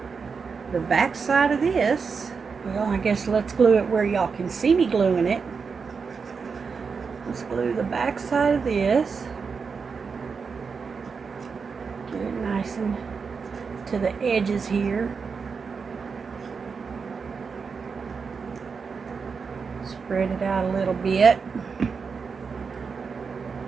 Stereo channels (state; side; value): quieter; left; 5.4 dB